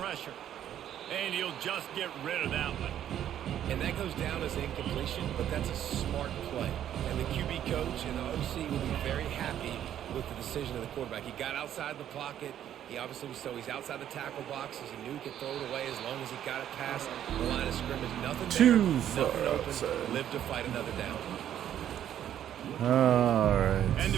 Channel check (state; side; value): quieter; left; 10.7 dB